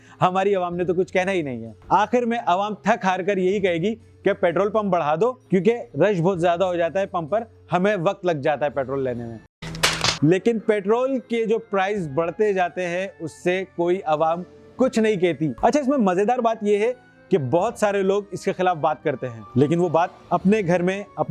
हमारी आवाम ने तो कुछ कहना ही नहीं है। आखिर में आवाम थक हार कर यही कहेगी कि पेट्रोल पंप बढ़ा दो, क्योंकि रश बहुत ज्यादा हो जाता है पंप पर, हमें वक्त लग जाता है पेट्रोल लेने में। लेकिन पेट्रोल के जो प्राइस बढ़ते जाते हैं उससे कोई आवाम कुछ नहीं कहती। अच्छा, इसमें मजेदार बात यह है कि बहुत सारे लोग इसके खिलाफ बात करते हैं, लेकिन वो बात अपने घर में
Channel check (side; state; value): both; identical; correlation 1.00